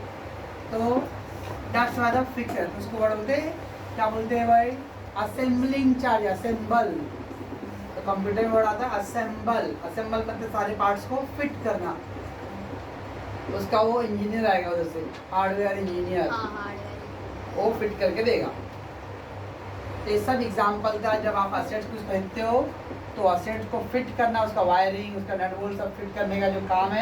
तो दैट्स वाई द फिक्सर, उसको वर्ड बोलते हैं, क्या बोलते हैं भाई, असेंबलिंग चार्ज, असेंबल। तो कंप्यूटर में वर्ड आता है असेंबल। असेंबल मतलब सारे पार्ट्स को फिट करना, उसका वो इंजीनियर आएगा उधर से, हार्डवेयर इंजीनियर, वो फिट करके देगा। तो ये सब एग्जाम्पल था, जब आप असेट्स कुछ खरीदते हो तो असेट को फिट करना, उसका वायरिंग, उसका नट बोल्ट सब फिट करने का जो काम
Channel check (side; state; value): both; identical; correlation 1.00